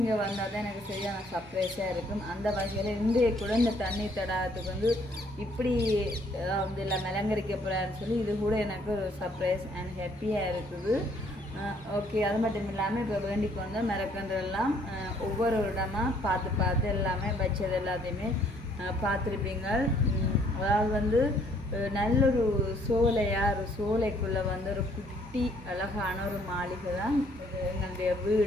வந்தால் தான் எனக்கு சரியான சர்ப்ரைஸாக இருக்கும். அந்த வகையில் இன்றைய கூட இந்த தண்ணி தடாகத்துக்கு வந்து இப்படி வந்து எல்லாம் அலங்கரிக்க போகிறான்னு சொல்லி இது கூட எனக்கு ஒரு சர்ப்ரைஸ் அண்ட் ஹாப்பியாக இருக்குது. ஓகே, அது மட்டும் இல்லாமல் இப்போ வேண்டிக்கு வந்தால் மரக்கன்றெல்லாம் ஒவ்வொரு இடமாக பார்த்து எல்லாமே வச்சது எல்லாத்தையுமே பார்த்துருப்பீங்க. அதாவது வந்து நல்லொரு ஒரு சோலைக்குள்ளே வந்து ஒரு குட்டி அழகான ஒரு மாளிகை தான் இது எங்களுடைய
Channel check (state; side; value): normal; both; correlation 0.64